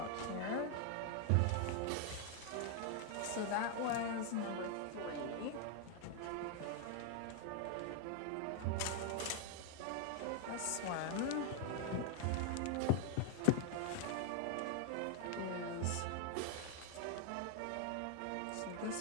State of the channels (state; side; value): different; both; correlation 0.00